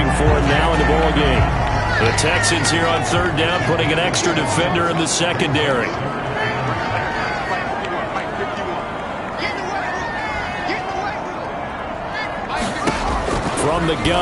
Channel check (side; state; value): both; identical; correlation 1.00